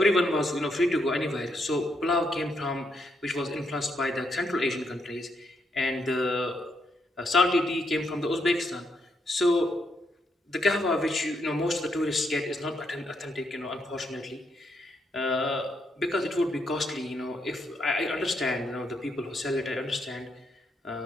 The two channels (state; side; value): normal; both; correlation 0.78